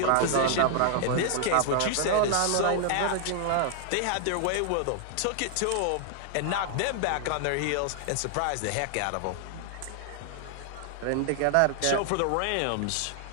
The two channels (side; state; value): both; different; correlation 0.00